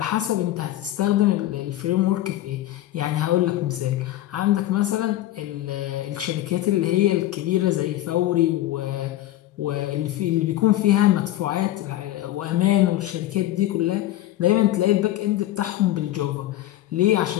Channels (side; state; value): right; quieter; 14.4 dB